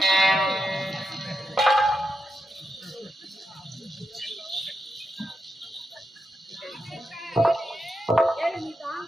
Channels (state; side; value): normal; both; correlation 0.86